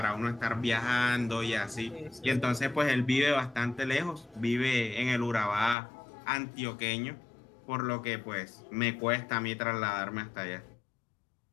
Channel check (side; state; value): right; drops out; at 5.8 s